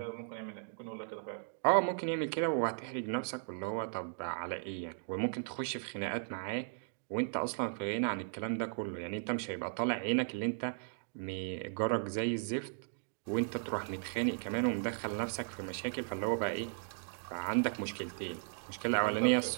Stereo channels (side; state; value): left; silent; digital silence